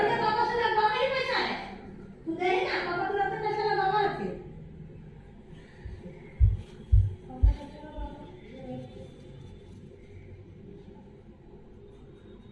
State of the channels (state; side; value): identical; both; correlation 1.00